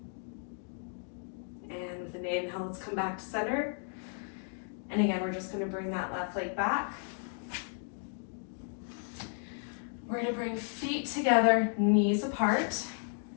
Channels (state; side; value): silent; right; 55 dB below the other